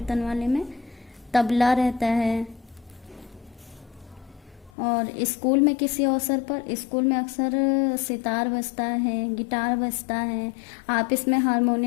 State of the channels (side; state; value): right; drops out; at 4.7 s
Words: वाले में। तबला रहता है। और स्कूल में किसी अवसर पर, स्कूल में अक्सर सितार बजता है, गिटार बजता है। आप इसमें